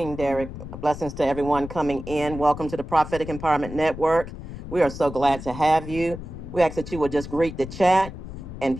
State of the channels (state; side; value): noise; left; rumble, 11 dB below the sound